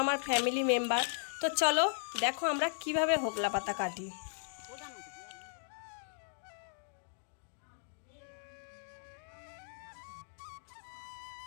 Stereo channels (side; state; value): right; silent; digital silence